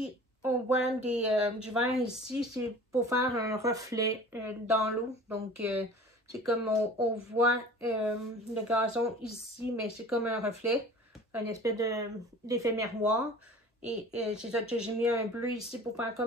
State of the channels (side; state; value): both; normal; correlation 0.43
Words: on voit du vert ici, c'est pour faire un reflet dans l'eau. Donc, c'est comme on voit le gazon ici, mais c'est comme un reflet, un espèce d'effet miroir. Et c'est ça que j'ai mis un bleu ici pour faire